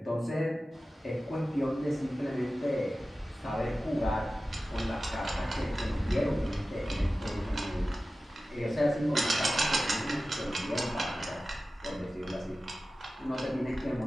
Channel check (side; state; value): both; normal; correlation 0.95